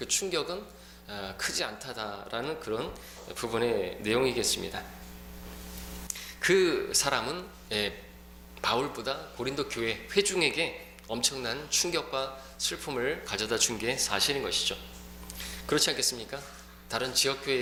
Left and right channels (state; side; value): identical; both; correlation 1.00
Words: 충격은 크지 않다라는 그런 부분의 내용이겠습니다. 그 사람은 바울보다 고린도 교회 회중에게 엄청난 충격과 슬픔을 가져다 준 게 사실인 것이죠. 그렇지 않겠습니까? 다른 지역교회에